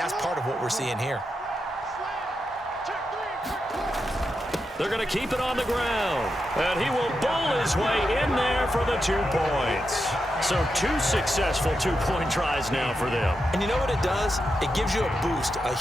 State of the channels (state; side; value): normal; both; correlation 0.87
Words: part of what we're seeing here. They're going to keep it on the ground. And he will bowl his way in there for the 2 points. So 2 successful 2-point tries now for them. And you know what it does? It gives you a boost, a